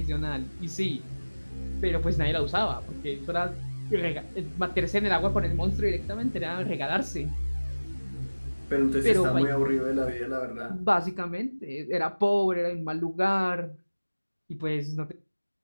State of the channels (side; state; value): both; inverted; correlation -1.00